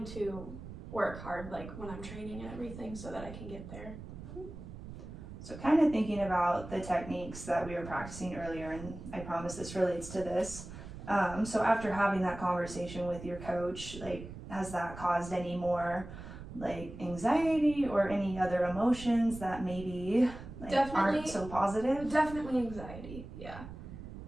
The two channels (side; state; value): right; noise; rumble, 12 dB below the sound